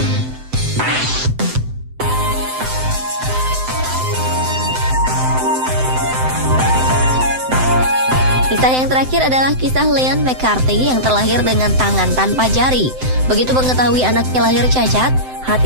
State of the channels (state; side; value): late; left; 7.8 ms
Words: Kisah yang terakhir adalah kisah Leon McCarthy yang terlahir dengan tangan tanpa jari. Begitu mengetahui anaknya lahir cacat,